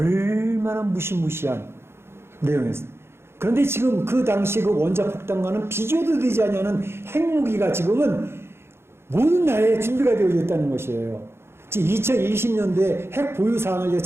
무시무시한 내용이었습니다. 그런데 지금 그 당시 그 원자폭탄과는 비교도 되지 않는 핵무기가 지금은 모든 나라에 준비가 되어 있다는 것이에요. 지금 2020년도에 핵 보유 사항을 제가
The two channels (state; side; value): late; left; 0.12 ms